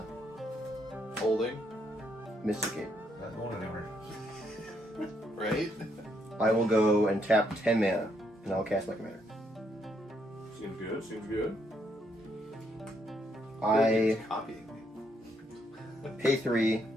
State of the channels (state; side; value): normal; both; correlation 0.74